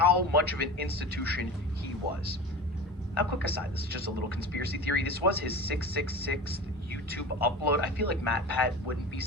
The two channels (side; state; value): both; normal; correlation 0.33